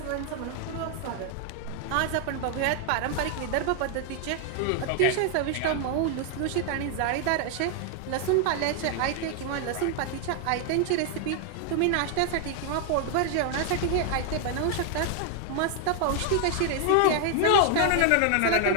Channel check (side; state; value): both; different; correlation 0.00